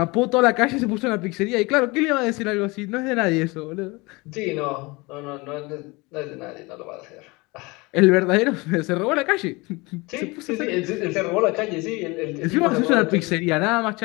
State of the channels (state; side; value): quieter; right; 24.8 dB